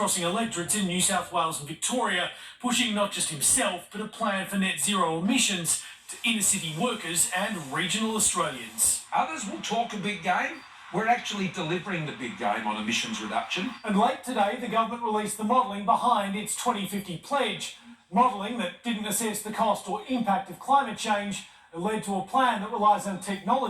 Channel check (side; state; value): both; identical; correlation 1.00